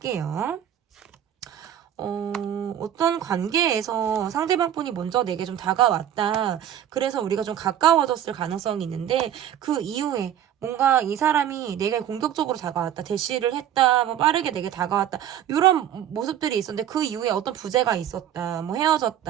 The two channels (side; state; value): left; quieter; 10.5 dB